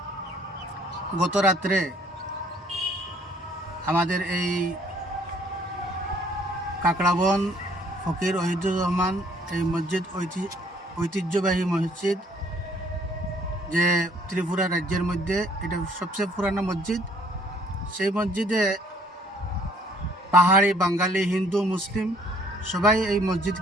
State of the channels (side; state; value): both; normal; correlation 0.61